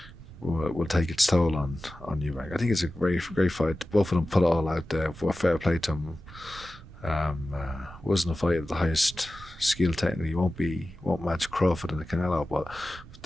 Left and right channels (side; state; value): both; normal; correlation 0.95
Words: will take its toll on Eubank. I think it's a great fight. Both of them put it all out there. Fair play to them. Wasn't a fight at the highest skill technically. Won't match Crawford and Canelo, but